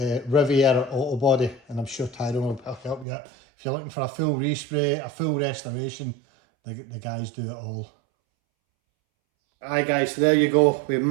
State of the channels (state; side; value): drops out; left; at 3.1 s